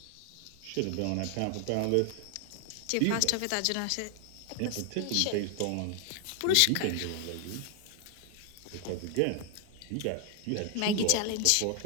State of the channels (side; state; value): both; different; correlation 0.00